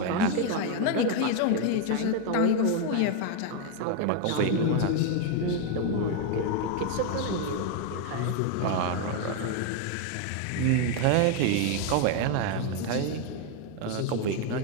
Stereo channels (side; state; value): both; different; correlation 0.01